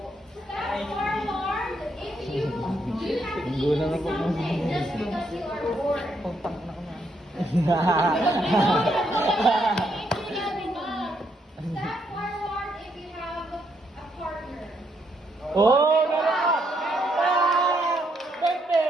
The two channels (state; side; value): normal; both; correlation 0.75